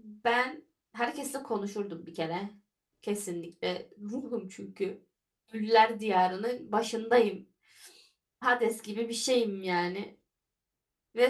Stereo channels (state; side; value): identical; both; correlation 1.00